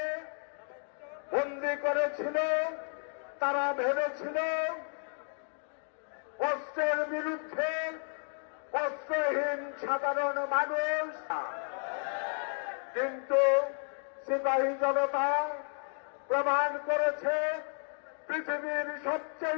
বন্দী করেছিল, তারা ভেবেছিল কষ্টের বিরুদ্ধে কষ্টহীন সাধারণ মানুষ, কিন্তু সিপাহী জনতা প্রমাণ করেছে পৃথিবীর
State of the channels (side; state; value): right; silent; 56 dB below the other